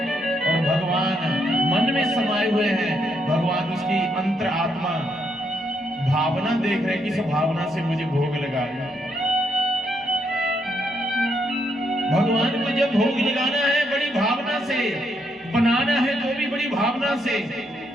और भगवान मन में समाये हुए हैं। भगवान उसकी अंतर आत्मा भावना देख रहे, किस भावना से मुझे भोग लगा रहे हैं। भगवान को जब भोग लगाना है बड़ी भावना से, बनाना है तो भी बड़ी भावना से।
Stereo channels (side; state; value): both; normal; correlation 0.76